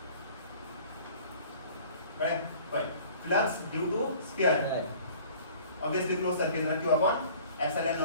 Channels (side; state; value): both; inverted; correlation -0.49